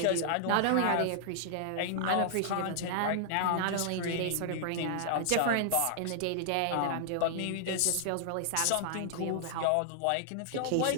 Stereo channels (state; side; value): different; both; correlation -0.01